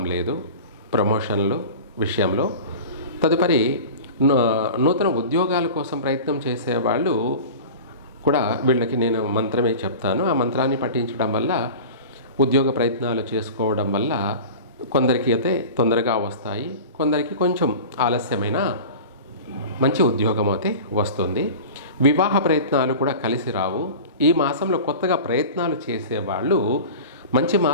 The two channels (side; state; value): both; inverted; correlation -0.35